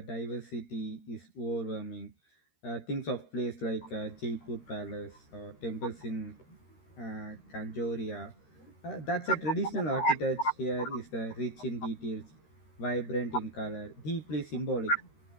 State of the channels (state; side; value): late; right; 13 ms